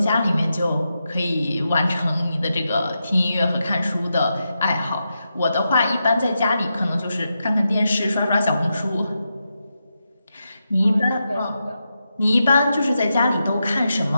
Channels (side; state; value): both; inverted; correlation -0.87